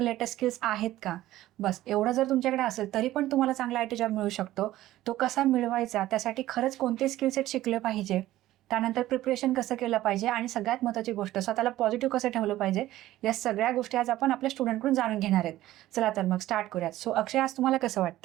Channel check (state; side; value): quieter; left; 15.0 dB